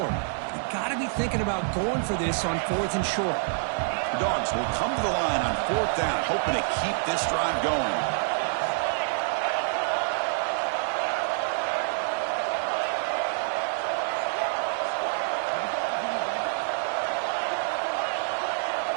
You got to be thinking about going for this on 4th and short. The Dogs will come to the line on 4th down, hoping to keep this drive going.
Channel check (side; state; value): left; silent; digital silence